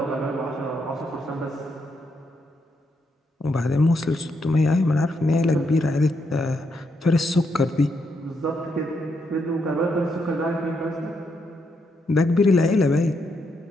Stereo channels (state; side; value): normal; both; correlation 0.79